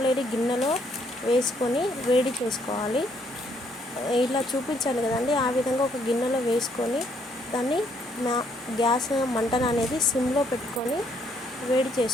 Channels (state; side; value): normal; both; correlation 0.69